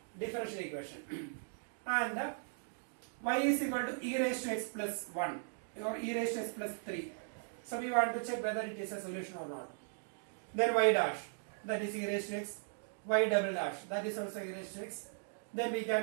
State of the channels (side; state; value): left; silent; digital silence